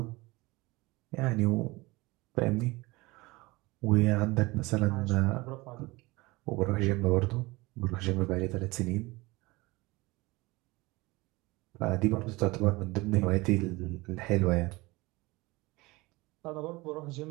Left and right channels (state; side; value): quieter; left; 22.3 dB